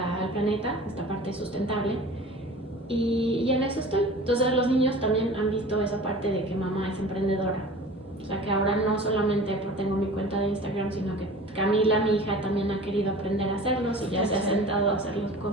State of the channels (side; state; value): both; normal; correlation 0.40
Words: planeta, esta parte sustentable. Y en eso estoy. Entonces los niños también han visto esa parte de que mamá es emprendedora. O sea que ahora no solamente tengo mi cuenta de Instagram, sino que Camila, mi hija, también ha querido aprender a hacerlos y ya se ha sentado a hacerlos